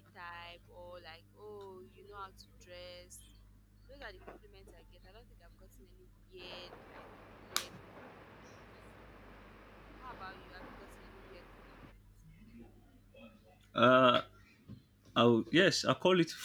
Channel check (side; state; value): both; identical; correlation 1.00